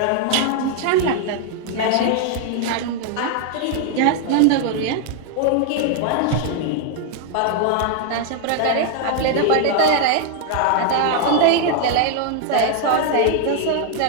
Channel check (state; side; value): different; both; correlation 0.00